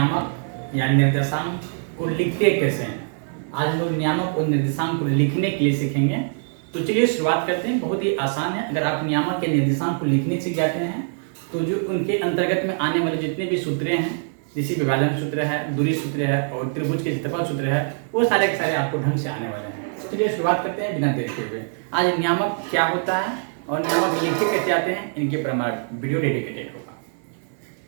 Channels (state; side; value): silent; left; digital silence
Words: या निर्देशांक को लिखते कैसे हैं। आज हम लोग नियामक और निर्देशांक को लिखने के लिए सीखेंगे। तो चलिए शुरुआत करते हैं। बहुत ही आसान है। अगर आप नियामक या निर्देशांक को लिखने सीख जाते हैं तो जो उनके अंतर्गत में आने वाले जितने भी सूत्र हैं, जैसे विभाजन सूत्र है, दूरी सूत्र है और त्रिभुज के क्षेत्रफल सूत्र है, वो सारे के सारे आपको ढंग से आने वाले हैं। चलिए शुरुआत करते हैं बिना देर के हुए। आज नियामक क्या होता है और नियामक लिखे कैसे आते हैं, इनके पर हमारा वीडियो डेडिकेटेड होगा।